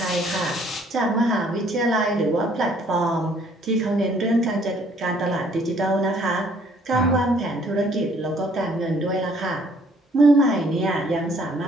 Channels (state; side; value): normal; both; correlation 0.62